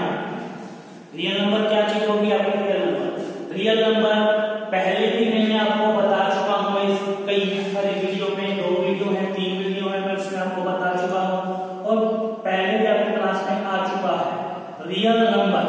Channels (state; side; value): identical; both; correlation 1.00